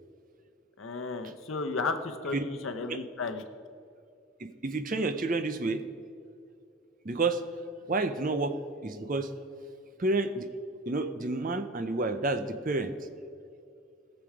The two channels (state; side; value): normal; both; correlation 0.34